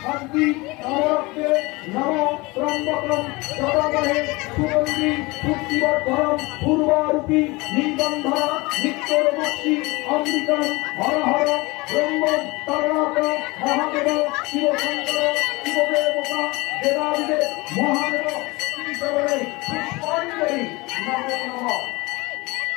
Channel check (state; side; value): quieter; right; 23.7 dB